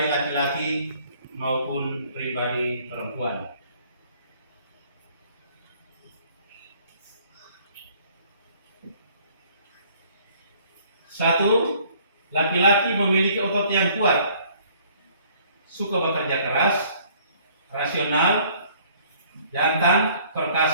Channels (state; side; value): inverted; both; correlation -0.58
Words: laki-laki maupun pribadi perempuan. Satu, laki-laki memiliki otot yang kuat, suka bekerja keras, rasional, jantan,